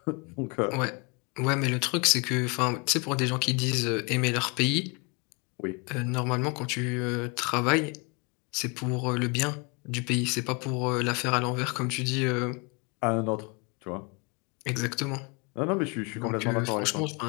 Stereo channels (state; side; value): quieter; right; 30.0 dB